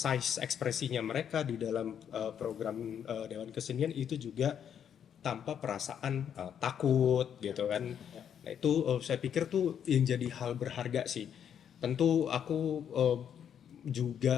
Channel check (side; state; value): right; quieter; 8.6 dB